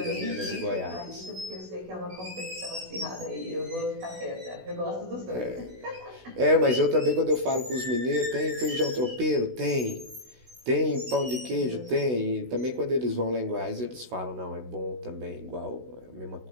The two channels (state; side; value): late; left; 16 ms